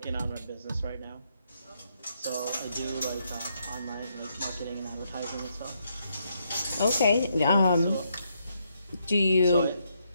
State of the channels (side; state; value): both; inverted; correlation -0.77